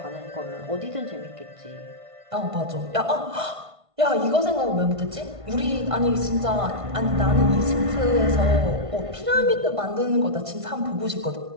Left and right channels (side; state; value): left; late; 1.5 ms